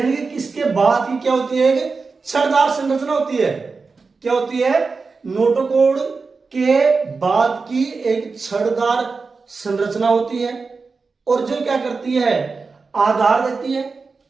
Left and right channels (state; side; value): quieter; left; 4.4 dB